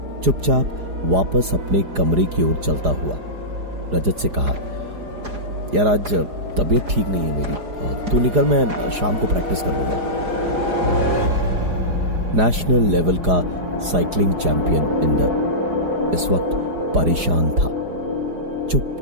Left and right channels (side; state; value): left; late; 4.9 ms